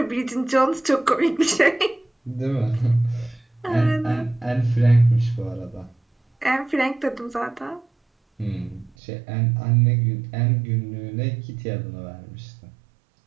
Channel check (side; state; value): left; drops out; at 9.0 s